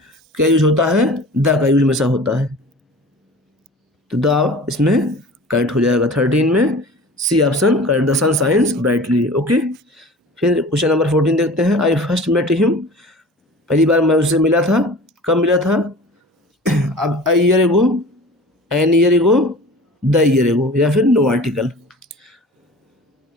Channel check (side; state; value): both; normal; correlation 0.40